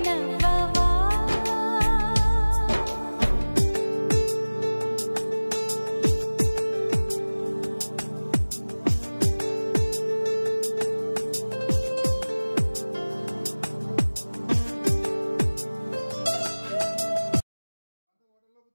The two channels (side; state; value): both; inverted; correlation -1.00